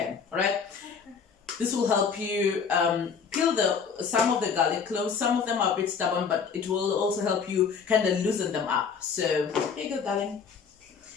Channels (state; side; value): quieter; right; 6.2 dB